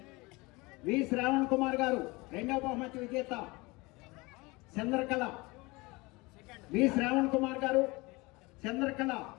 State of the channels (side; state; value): right; quieter; 24.1 dB